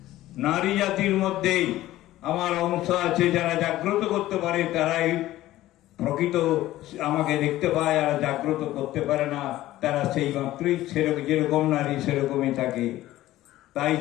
নারী জাতির মধ্যেই আমার অংশ আছে, যারা জাগ্রত করতে পারে তারাই প্রকৃত আমাকে দেখতে পায়, আর জাগ্রত করতে পারে না তারা সেই মাত্রই সেরকম, যেরকম নারী সেরকমই থাকে। তাই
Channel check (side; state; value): right; quieter; 15.3 dB